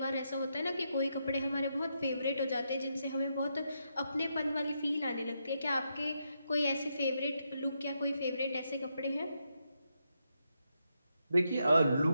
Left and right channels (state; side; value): inverted; both; correlation -0.82